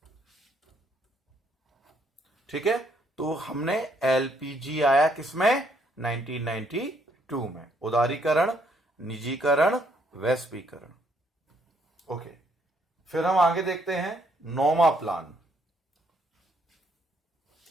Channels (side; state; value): both; normal; correlation 0.70